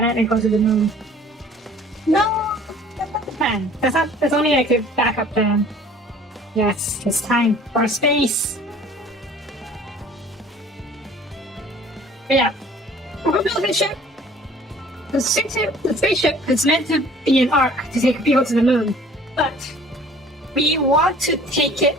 and go to the moon. No, that's not the plan. That's only like a backup plan. Yes, it's time for space. But yeah, we're building a ship. The spaceship is meant to be an arc to take people to the moon, but we want to take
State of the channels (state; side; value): normal; both; correlation 0.51